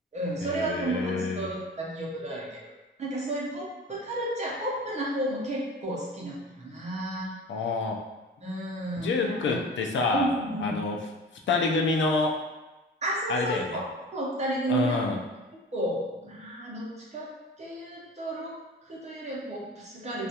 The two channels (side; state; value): both; normal; correlation 0.37